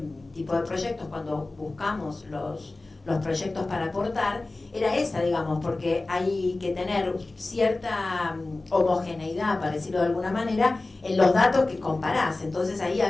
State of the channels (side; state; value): right; quieter; 3.1 dB